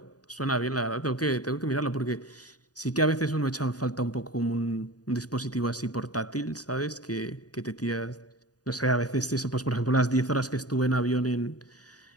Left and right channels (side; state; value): right; late; 0.68 ms